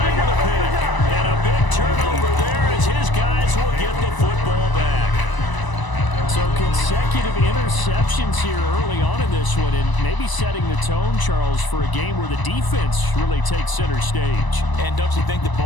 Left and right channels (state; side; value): late; right; 1.0 ms